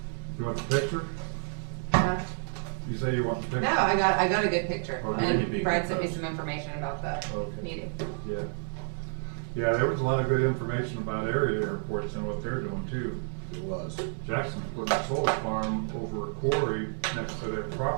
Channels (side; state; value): left; silent; 58 dB below the other